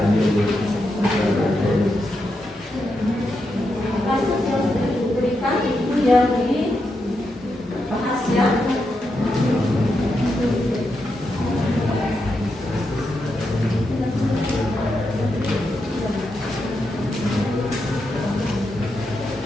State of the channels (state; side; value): normal; both; correlation 0.85